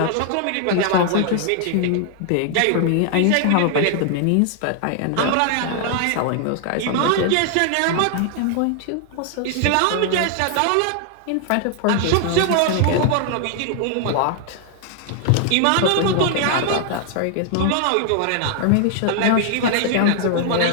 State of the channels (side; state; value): both; different; correlation 0.00